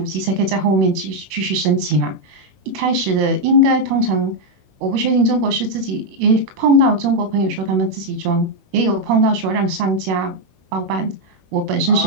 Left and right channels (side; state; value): left; late; 21 ms